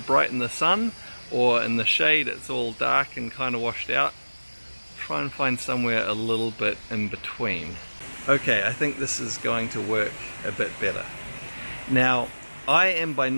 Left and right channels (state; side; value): inverted; both; correlation -1.00